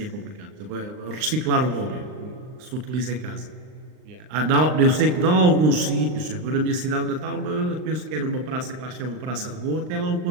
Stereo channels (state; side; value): late; left; 39 ms